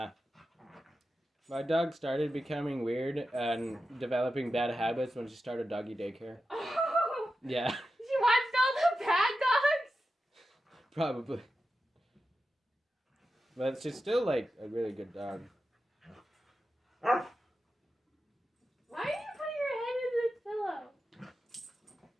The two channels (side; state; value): both; normal; correlation 0.91